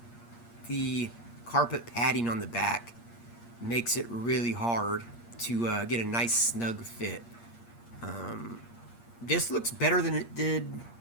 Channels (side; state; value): right; late; 8.5 ms